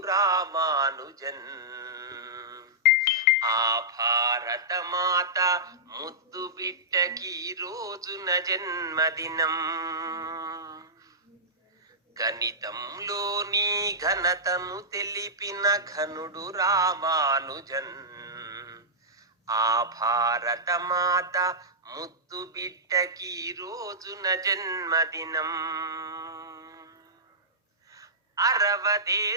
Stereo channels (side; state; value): both; normal; correlation -0.13